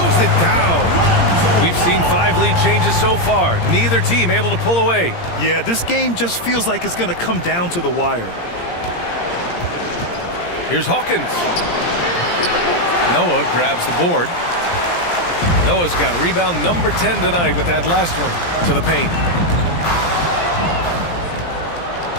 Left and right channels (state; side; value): late; right; 17 ms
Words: it down. We've seen 5 lead changes so far. Neither team able to pull away. Yeah, this game just feels like it's going to come down to the wire. Here's Hawkins. Noah grabs the board. Noah's got rebound number 10 tonight with that last one to the paint.